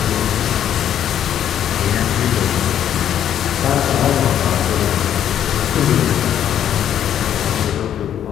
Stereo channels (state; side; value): quieter; right; 10.1 dB